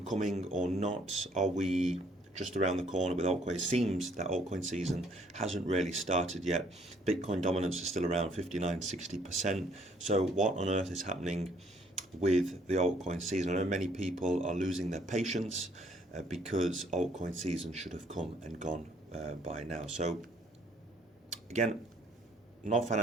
coming or not? Are we just around the corner with altcoin? It seems that altcoin season hasn't really started yet. Bitcoin dominance is still around 59-60%. So what on earth is happening with the altcoin season? I know many people are losing their patience because altcoin season should have come and gone by now. So again, not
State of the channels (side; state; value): both; normal; correlation 0.63